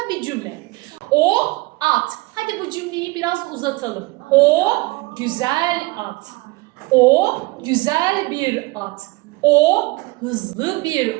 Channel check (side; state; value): left; quieter; 23.2 dB